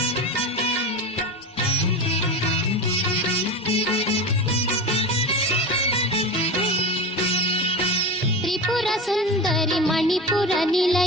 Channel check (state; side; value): normal; both; correlation 0.25